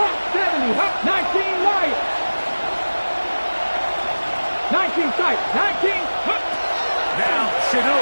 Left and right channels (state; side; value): inverted; both; correlation -1.00